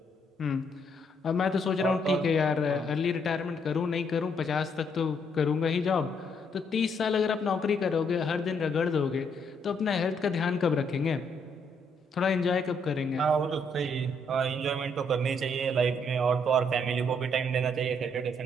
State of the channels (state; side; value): normal; both; correlation 0.72